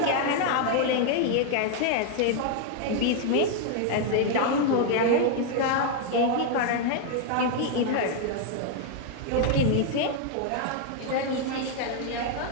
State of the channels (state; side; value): different; both; correlation 0.00